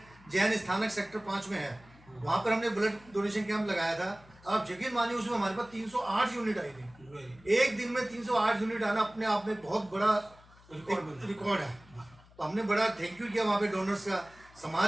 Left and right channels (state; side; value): noise; left; hum, 25 dB below the sound